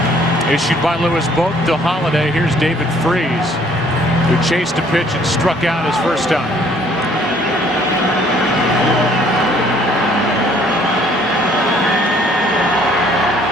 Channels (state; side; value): normal; both; correlation 0.60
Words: issued by Lewis both to Holiday. Here's David Freese, who chased a pitch and struck out his first time.